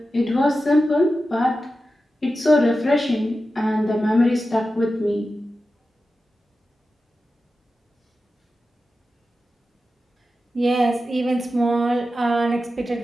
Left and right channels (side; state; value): both; normal; correlation 0.92